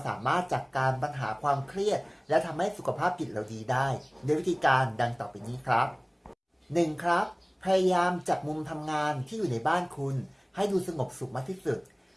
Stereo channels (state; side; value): identical; both; correlation 1.00